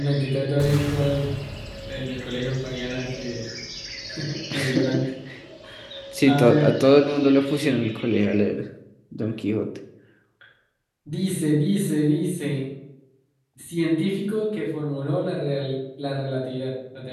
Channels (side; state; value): both; identical; correlation 1.00